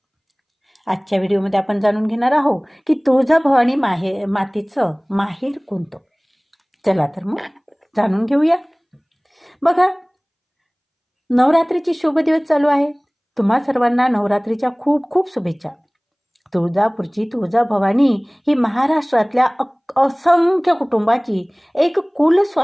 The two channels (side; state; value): both; identical; correlation 1.00